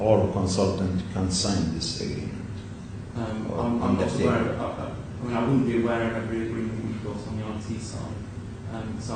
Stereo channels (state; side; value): identical; both; correlation 1.00